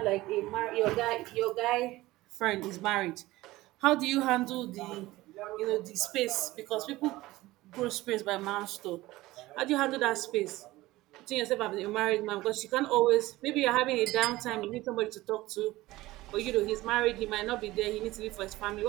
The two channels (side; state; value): left; quieter; 18.2 dB